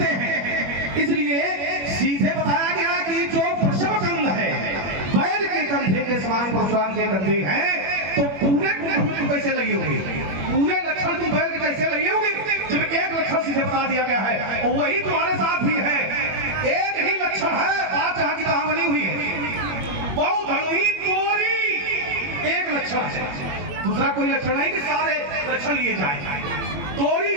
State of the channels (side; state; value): left; late; 21 ms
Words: हैं। इसलिए सीधे बताया गया कि जो वृषभ कंध है बैल के कंधे के समान परशुराम के कंधे हैं, तो पूरे तुम कैसे लगे होंगे? पूरे लक्षण तुम बैल के कैसे लगे होंगे जब एक लक्षण सीधे बता दिया गया है और वही तुम्हारे साथ भी है। एक ही लक्षण है, बात जहां की कहां बनी हुई है। बहु धनुही तोरी एक लक्षण है, दूसरा कोई लक्षण नहीं कि सारे लक्षण लिए जाए। तोरी